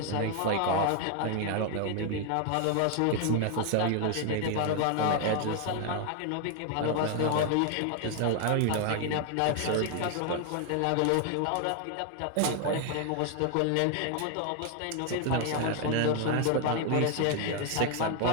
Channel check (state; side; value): different; both; correlation 0.01